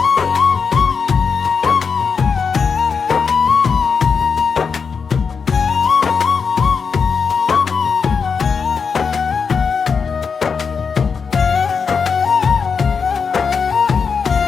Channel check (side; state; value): right; quieter; 5.8 dB